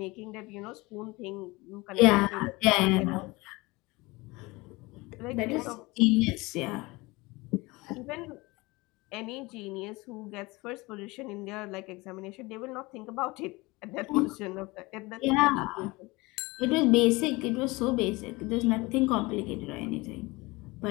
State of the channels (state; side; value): quieter; right; 23.1 dB